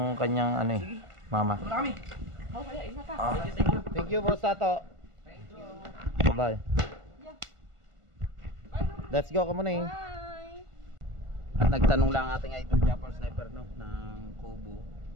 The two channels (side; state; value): left; late; 1.5 ms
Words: kanyang ano eh, mama. Wala kami. Thank you, Boss Tato. Bye-bye. Let's go, come on eh. Bye. At nagtanong lang ating idol Japper Sniper, no, ng Kubo.